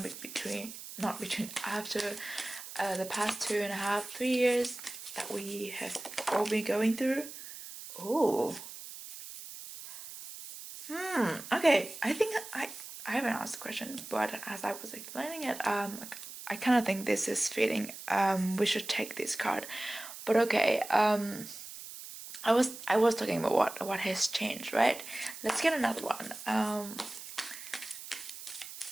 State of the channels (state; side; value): noise; right; hiss, 12 dB below the sound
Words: after the past 2.5, 3 years that we have all been going through. Oh. Okay, I think I haven't asked the question, but as I was explaining it, I kind of think this is fitting. We should take this card. But okay, I was talking about what has changed, right? Let's get another one.